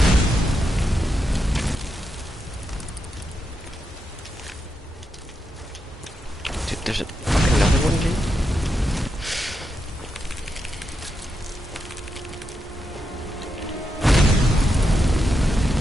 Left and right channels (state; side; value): normal; both; correlation 0.85